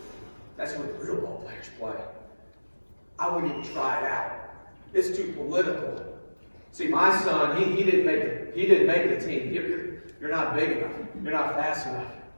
That's where the real ball players play. I wouldn't even try it out. It's too political. See, my son, he didn't make the team. You're not big enough. You're not fast enough.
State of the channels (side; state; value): both; inverted; correlation -1.00